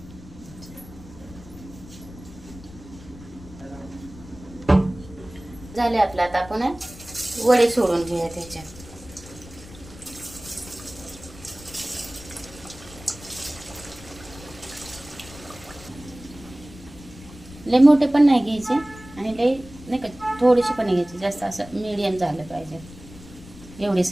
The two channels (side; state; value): left; noise; rumble, 18 dB below the sound